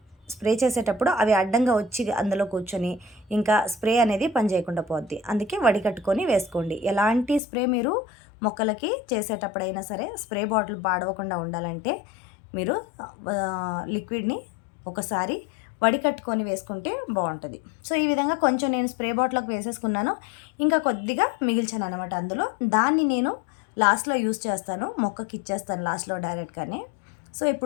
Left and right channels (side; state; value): right; drops out; at 7.4 s